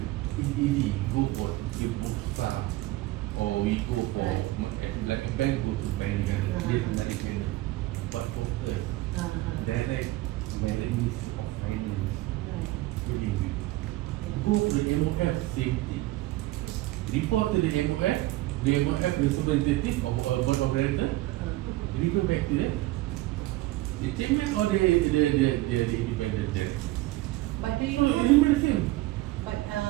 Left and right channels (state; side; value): quieter; left; 18.1 dB